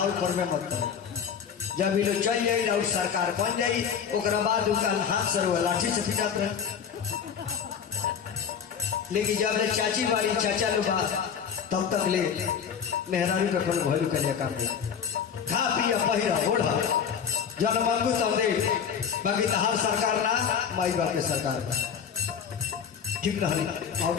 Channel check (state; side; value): quieter; right; 7.4 dB